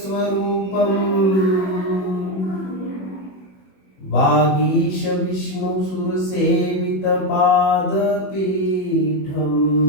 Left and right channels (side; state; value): right; late; 21 ms